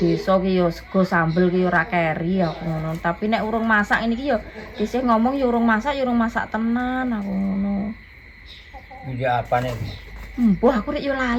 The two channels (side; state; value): both; identical; correlation 1.00